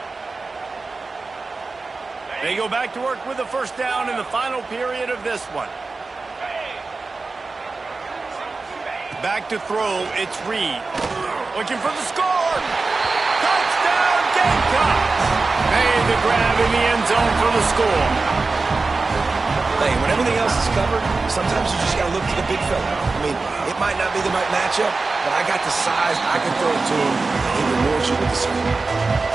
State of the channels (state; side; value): quieter; left; 3.9 dB